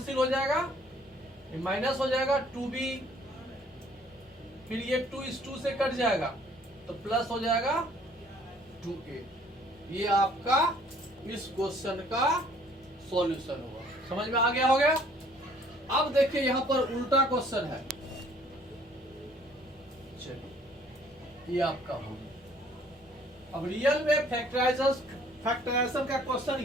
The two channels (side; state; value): both; normal; correlation 0.58